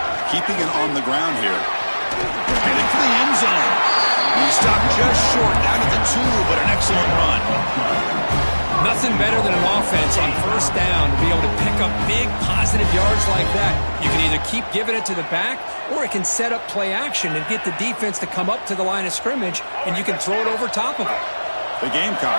Keeping it on the ground here. Headed for the end zone. He stopped just short, down at the 2, but an excellent run. Nothing better than an offense on first down to be able to pick up big positive yards like that. You can either keep giving it to the back, or it can set up play action and get the defense to come up to the line of scrimmage, and you can throw it over top of it. The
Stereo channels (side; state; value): both; inverted; correlation -1.00